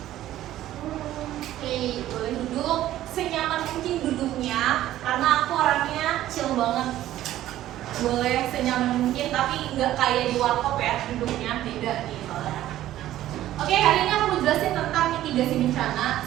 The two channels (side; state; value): left; quieter; 13.6 dB